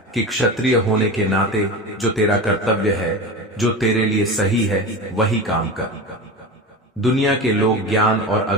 कि क्षत्रिय होने के नाते जो तेरा कर्तव्य है, जो तेरे लिए सही है, वही काम कर। दुनिया के लोग ज्ञान और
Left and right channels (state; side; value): normal; both; correlation 0.28